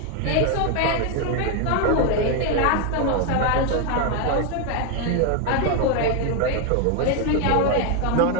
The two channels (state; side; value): different; both; correlation 0.01